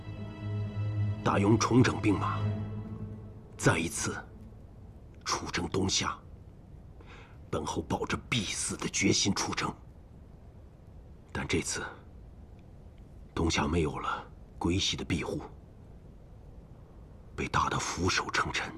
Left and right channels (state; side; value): identical; both; correlation 1.00